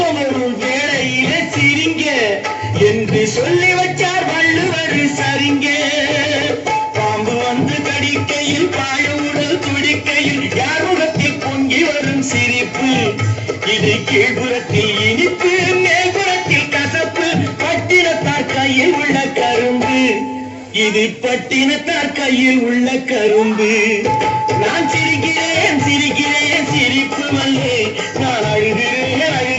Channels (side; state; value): both; identical; correlation 1.00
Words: வரும் வேளையிலே சிரிங்க என்று சொல்லி வச்சார் வள்ளுவர் சரிங்க. பாம்பு வந்து கடிக்கையில் பாழுவுடல் துடிக்கையில் யார் முகத்தில் பொங்கி வரும் சிரிப்பு. இது கீழ்புறத்தில் இனிப்பு, மேல்புறத்தில் கசப்பு. பட்டினத்தார் கையில் உள்ள கரும்பு, இது பட்டினத்தார் கையில் உள்ள கரும்பு. நான் சிரிக்கிறேன் சிரிக்கிறேன் சிரிப்பு வல்லே, நான் அழுகிறேன்